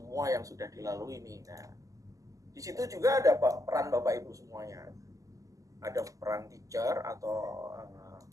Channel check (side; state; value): left; late; 0.16 ms